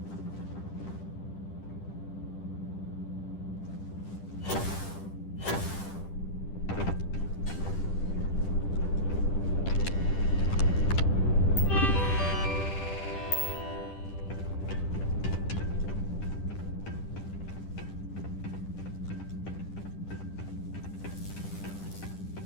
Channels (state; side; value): late; right; 10 ms